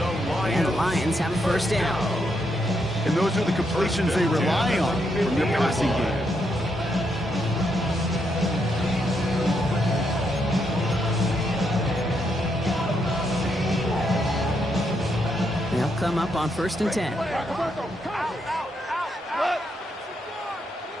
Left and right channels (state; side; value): normal; both; correlation 0.79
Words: And the Lions have a 1st down. And those are the completions they rely on from their passing game. They'll come up on 1st and 10.